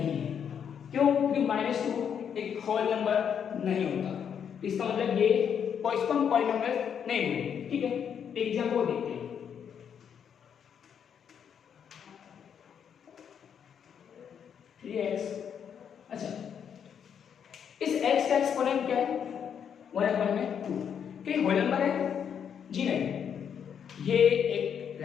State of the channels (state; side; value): quieter; right; 8.0 dB